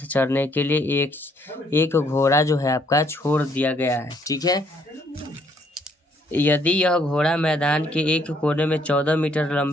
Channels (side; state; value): both; normal; correlation 0.67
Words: चरने के लिए एक घोड़ा जो है आपका छोड़ दिया गया है। ठीक है, यदि यह घोड़ा मैदान के एक कोने में 14 मीटर